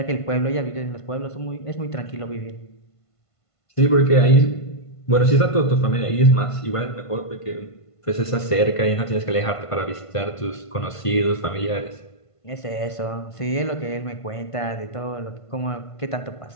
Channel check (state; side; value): late; right; 1.5 ms